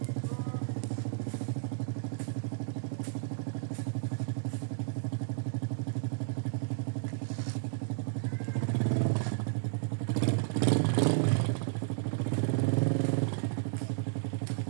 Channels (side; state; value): left; silent; digital silence